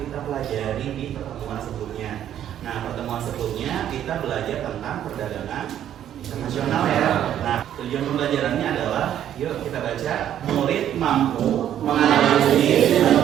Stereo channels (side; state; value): left; quieter; 10.7 dB